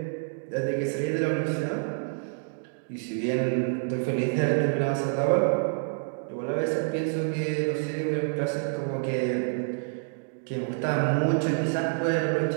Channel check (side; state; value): left; silent; digital silence